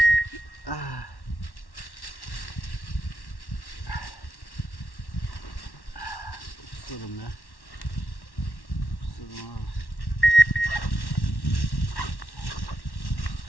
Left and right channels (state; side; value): late; right; 1.1 ms